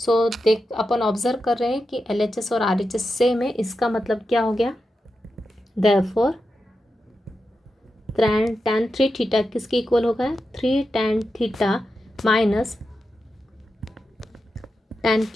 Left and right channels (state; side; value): normal; both; correlation 0.89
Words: देख अपन ऑब्जर्व कर रहे हैं कि LHS और RHS सेम है, इसका मतलब क्या हो गया, देयरफॉर tan 3 थीटा किसके इक्वल होगा, 3 tan theta minus tan